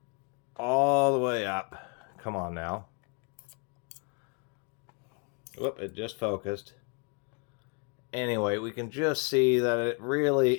all the way up, come on now. Whoop, it just focused. Anyway, we can just see that it really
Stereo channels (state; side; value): quieter; right; 34.3 dB